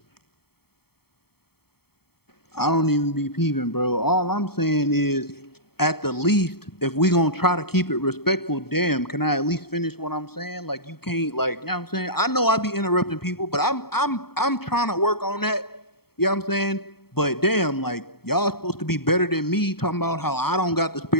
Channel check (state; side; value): late; right; 0.95 ms